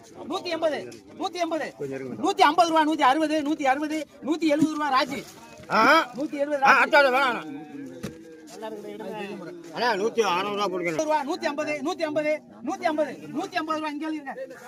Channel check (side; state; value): both; identical; correlation 1.00